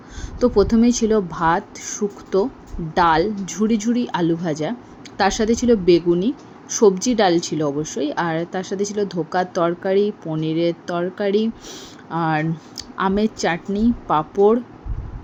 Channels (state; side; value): identical; both; correlation 1.00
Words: তো প্রথমেই ছিল ভাত, শুক্তো, ডাল, ঝুরি ঝুরি আলু ভাজা, তার সাথে ছিল বেগুনি, সবজি ডাল ছিল অবশ্যই, আর তার সাথে ছিল ধোকার তরকারি, পনিরের তরকারি, আর আমের চাটনি, পাঁপড়,